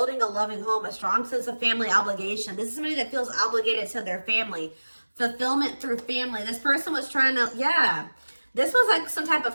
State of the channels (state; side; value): inverted; both; correlation -1.00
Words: a loving home, a strong sense of family obligation. This is somebody that feels obligated to their family. Fulfillment through family. This person was trying to, yeah. This was like some type